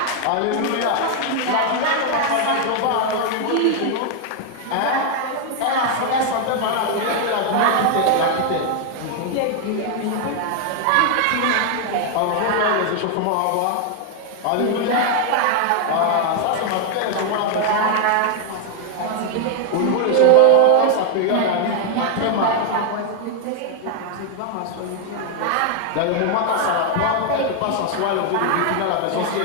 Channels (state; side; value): different; both; correlation 0.00